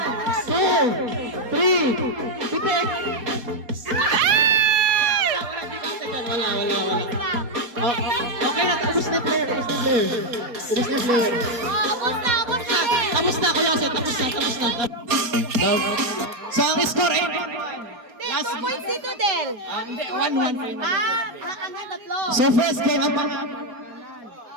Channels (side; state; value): left; late; 4.2 ms